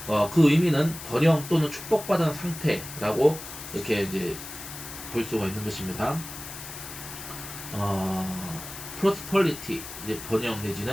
그 의미는 번영 또는 축복받은 상태라고 이렇게 이제 볼 수가 있는 것입니다. prosperity 이제 번영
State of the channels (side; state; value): left; noise; hiss, 11 dB below the sound